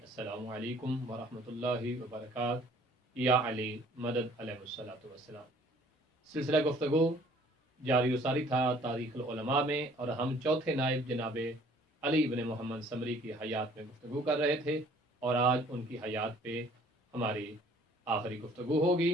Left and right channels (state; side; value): normal; both; correlation 0.56